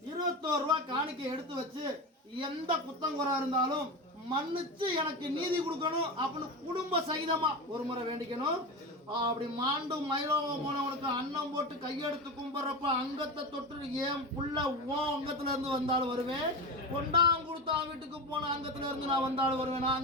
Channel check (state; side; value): normal; both; correlation 0.23